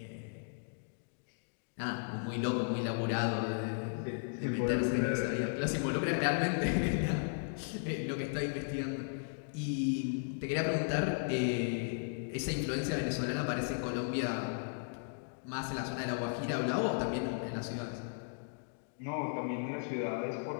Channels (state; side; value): silent; right; digital silence